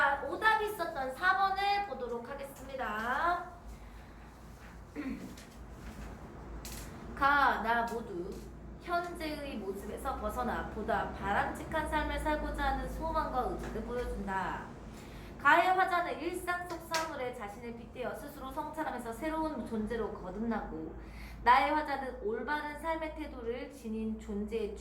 오답이 있었던 4번을 보도록 하겠습니다. 가, 나 모두 현재의 모습에서 벗어나 보다 바람직한 삶을 살고자 하는 소망과 의지를 보여준다. 가의 화자는 일상 속 사물에 자신을 빗대어 스스로 성찰하면서 새로운 존재로 거듭나고, 나의 화자는 올바른 삶의 태도를 지닌 존재에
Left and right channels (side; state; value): both; identical; correlation 1.00